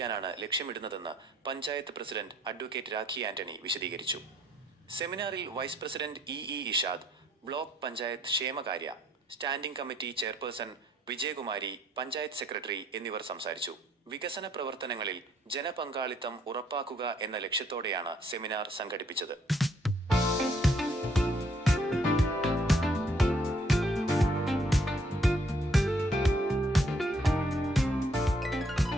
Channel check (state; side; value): normal; both; correlation 0.66